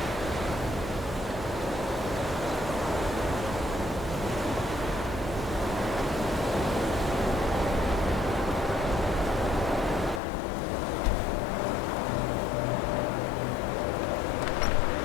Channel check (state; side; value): drops out; right; at 10.2 s